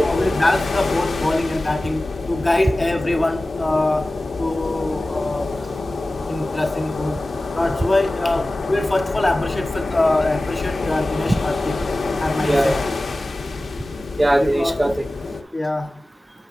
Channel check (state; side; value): normal; both; correlation 0.96